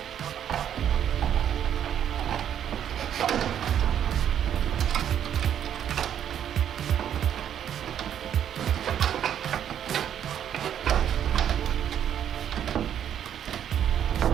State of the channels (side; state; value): left; quieter; 9.6 dB